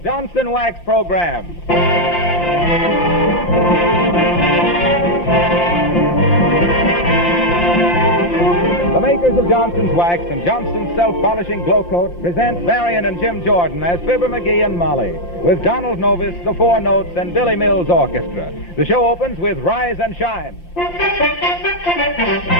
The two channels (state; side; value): late; right; 5.8 ms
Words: Wax program. The makers of Johnson's Wax and Johnson's Self-Polishing Glow Coat present Marion and Jim Jordan as Fibber McGee and Molly, with Donald Novis, the Four Notes, and Billy Mills Orchestra. The show opens with Rise and Shine.